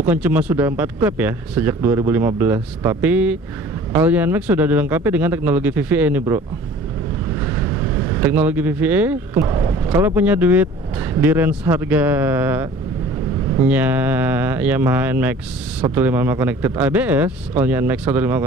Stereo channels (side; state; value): both; normal; correlation 0.47